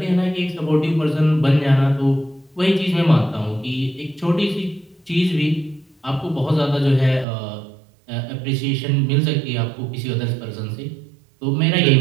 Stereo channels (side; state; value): left; drops out; at 7.2 s